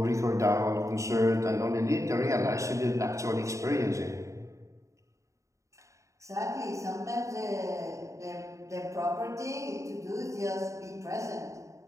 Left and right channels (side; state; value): left; late; 0.15 ms